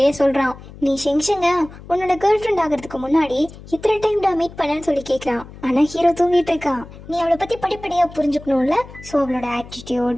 சொல்றான். நீ ஷெங்ஷங்க உன்னோட கேர்ள் ஃப்ரெண்ட் ஆகிறதுக்கு முன்னாடி இத்தனை டைம்டா மீட் பண்ணன்னு சொல்லி கேட்கறான். ஆனா ஹீரோ தூங்கிட்டு இருக்கான். நீ அவளை பத்தி படிப்படியா புரிஞ்சுக்கணும்ல. ஸோ அவளோட ஆட்டிடியூட்,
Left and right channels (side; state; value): left; noise; hum, 17 dB below the sound